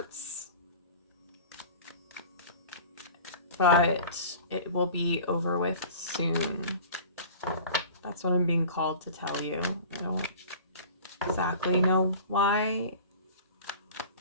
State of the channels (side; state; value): both; inverted; correlation -0.41